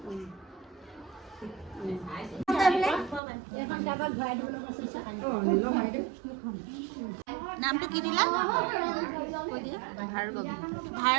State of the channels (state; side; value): drops out; left; at 3.2 s